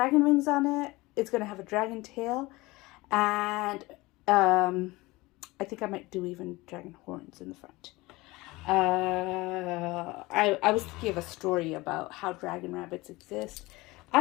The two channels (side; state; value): right; quieter; 21.3 dB